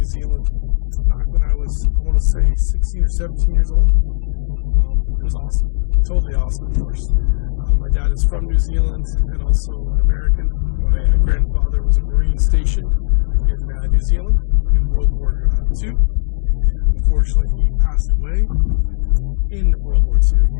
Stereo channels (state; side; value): silent; right; digital silence